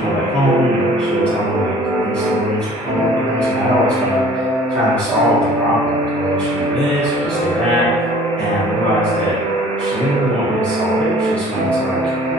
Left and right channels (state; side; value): normal; both; correlation 0.51